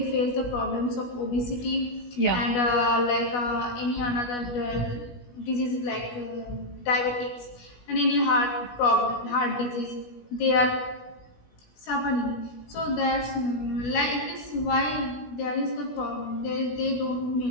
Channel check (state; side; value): late; right; 16 ms